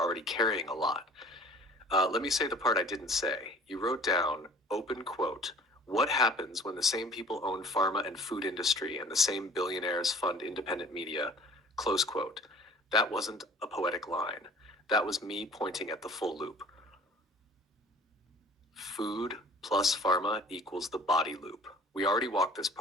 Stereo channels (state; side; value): normal; both; correlation 0.48